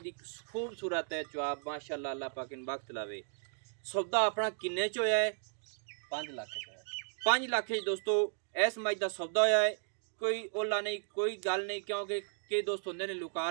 ਦੀ ਖੂਬਸੂਰਤ ਹੈ ਚੁਆਬ ਮਾਸ਼ਾਅੱਲਾ। ਅੱਲਾਹ ਪਾਕ ਨੂੰ ਬਖਤ ਲਾਵੇ। ਸੌਦਾ ਆਪਣਾ ਕਿੰਨੇ ਚ ਹੋਇਆ ਹੈ? 5 लाख का 5 ਲੱਖ ਚ ਦੋਸਤੋ ਇਸ ਮੱਝ ਦਾ ਸੌਦਾ ਹੋਇਆ ਹੈ। ਕੋਈ ਓਲਾ ਨਹੀਂ, ਕੋਈ ਗੱਲ ਨਹੀਂ, ਕਿਉਂਕਿ ਕਈ ਦੋਸਤ ਹੁੰਦੇ ਨੇ ਲੁਕਾ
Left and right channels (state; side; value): silent; left; digital silence